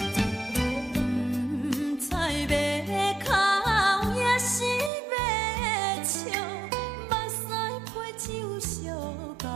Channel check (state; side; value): drops out; left; at 4.9 s